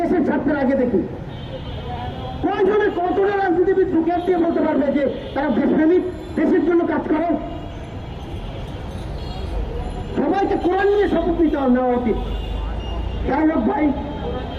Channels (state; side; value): identical; both; correlation 1.00